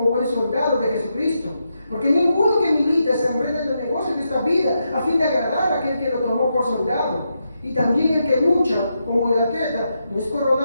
buen soldado de Jesucristo, porque ninguno que milita se enreda en los negocios de esta vida a fin de agradar a aquel que lo tomó por soldado. Y también el que lucha como el atleta no es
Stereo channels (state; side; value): inverted; both; correlation -0.84